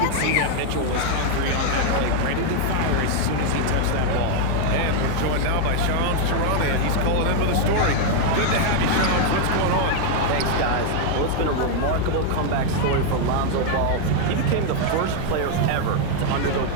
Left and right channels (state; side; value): different; both; correlation 0.00